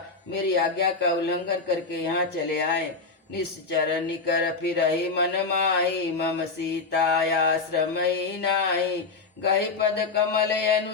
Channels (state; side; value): quieter; right; 4.2 dB